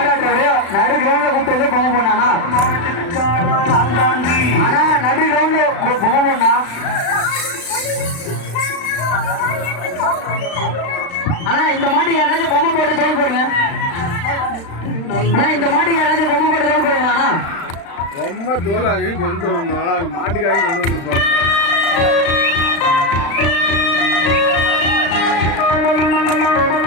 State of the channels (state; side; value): late; right; 35 ms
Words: நடு கிரவுண்ட்ல கூப்பிட்டு பொம்மை போனானா? ஆனா நடு கிரவுண்ட்ல பொம்மை போனா ஆனா இந்த மாட்டுக்கு யாராச்சும் பொம்மை போட்டு தோல் போடுங்க. ஆனா இந்த மாட்டுக்கு யாராச்சும் பொம்மை போட்டு தோல் போடுங்க. ரொம்ப தோலாகி கொண்டு வரணும். மாட்டுக்காரி கொண்டு வந்துருப்பாங்க.